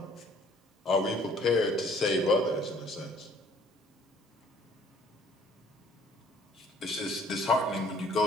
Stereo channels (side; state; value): both; normal; correlation 0.57